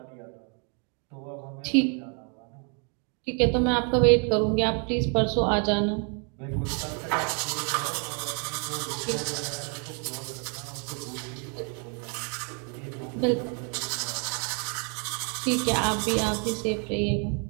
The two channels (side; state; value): left; quieter; 38.4 dB